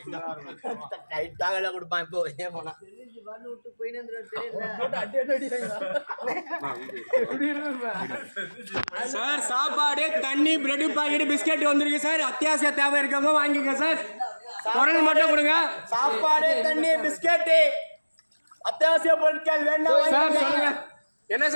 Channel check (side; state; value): both; inverted; correlation -1.00